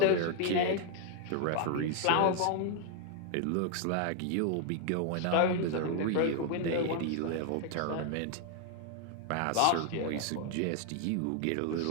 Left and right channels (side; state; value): both; different; correlation 0.00